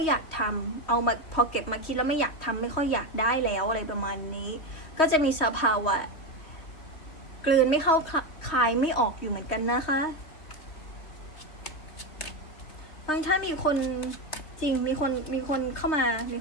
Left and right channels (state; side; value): late; right; 3.5 ms